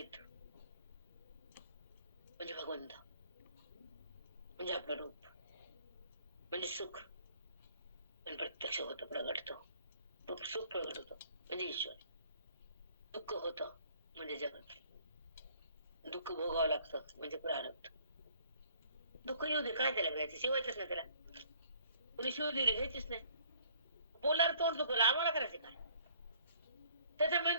म्हणजे भगवंत, म्हणजे आपलं रूप, म्हणजे सुख, पण प्रत्यक्ष होतं, प्रगटतो, सुख प्रगट होतो म्हणजे ईश्वर, दुःख होतं म्हणजे जगत, दुःख भोगावं लागतं म्हणजे प्रारब्ध. दुःख येऊ दे, काय त्याला घ्यायचं, शिवायचंच नाही त्याला, कुणी शिव दिली घ्यायचीच नाही, बोलार तोंड दुखवलं, आम्हाला करायचं काय, त्याचा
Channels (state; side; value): inverted; both; correlation -0.58